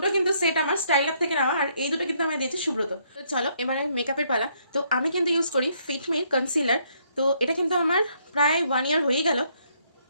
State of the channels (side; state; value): both; inverted; correlation -0.70